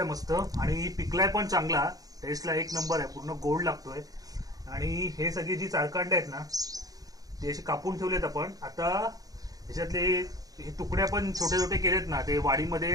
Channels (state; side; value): late; left; 0.18 ms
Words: मस्त आणि पिकलाय पण चांगला, टेस्टला एक नंबर आहे, पूर्ण गोड लागतोय. आणि हे सगळी जी चारकांडे आहेत ना ते असे कापून ठेवलेत आपण. आता त्याच्यातले हे तुकड्या पण छोटे छोटे केलेत ना, ते